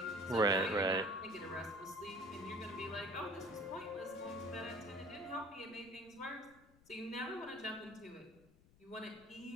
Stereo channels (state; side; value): noise; left; rumble, 26 dB below the sound